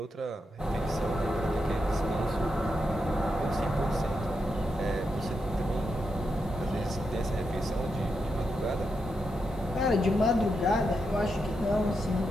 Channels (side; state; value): both; normal; correlation 0.85